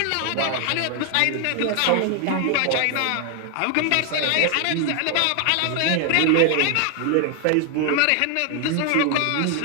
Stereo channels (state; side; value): different; both; correlation 0.00